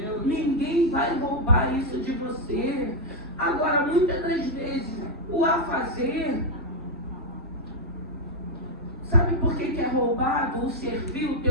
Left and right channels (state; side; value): normal; both; correlation 0.00